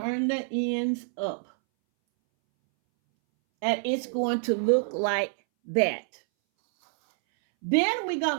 the ends up. And it's going to look like that. Then we're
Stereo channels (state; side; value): silent; left; 60 dB below the other